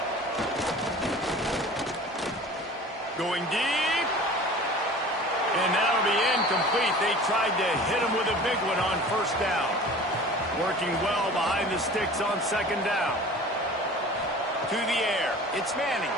Going deep. And that'll be incomplete. They tried to hit him with a big one on 1st down. Working well behind the sticks on 2nd down. To the air. It's Manning.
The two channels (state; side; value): normal; both; correlation 0.41